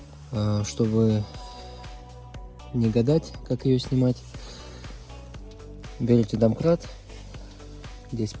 чтобы не гадать, как ее снимать, берете домкрат, здесь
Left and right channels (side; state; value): both; identical; correlation 1.00